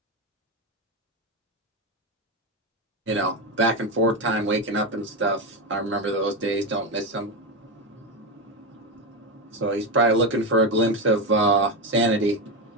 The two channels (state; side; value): normal; both; correlation 0.13